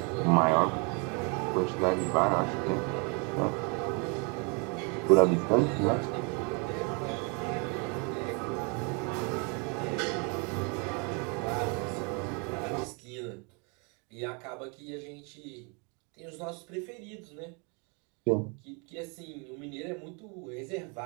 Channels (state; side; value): quieter; left; 34.1 dB